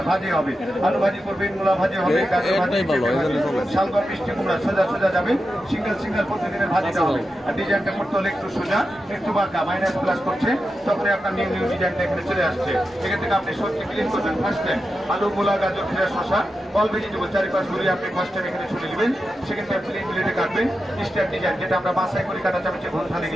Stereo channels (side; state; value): both; normal; correlation 0.90